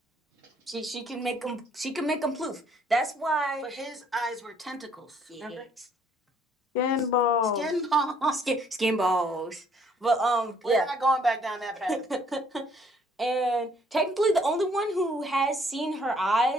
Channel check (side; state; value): both; normal; correlation 0.63